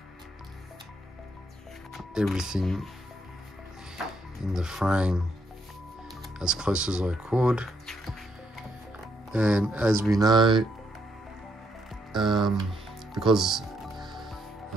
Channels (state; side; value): normal; both; correlation 0.75